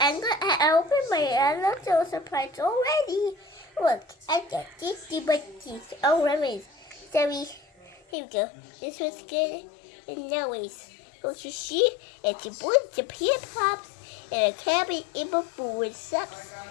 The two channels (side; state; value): right; drops out; at 8.0 s